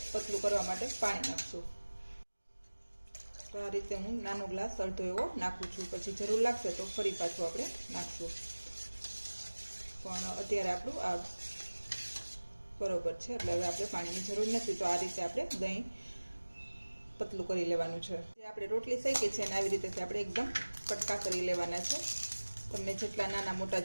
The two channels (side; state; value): both; inverted; correlation -1.00